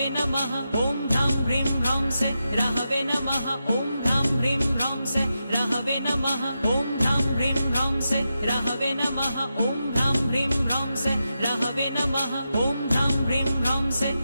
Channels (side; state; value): both; inverted; correlation -0.88